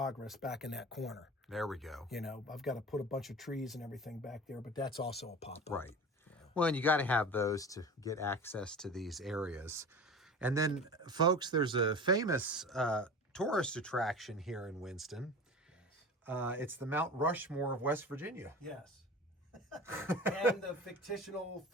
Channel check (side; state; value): both; normal; correlation 0.35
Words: back in that corner. There we go. You know, I've got to put a bunch of trees and everything back there, but that's also a pop-up. Right. Yeah. Well, and you got to have those to get access to these areas. And then, folks, there's a famous tourist attraction here in Winston. It's the Mount Rushmore of West Virginia. Yes. And the fictional